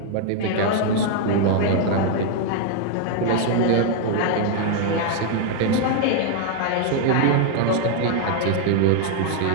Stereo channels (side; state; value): both; different; correlation 0.00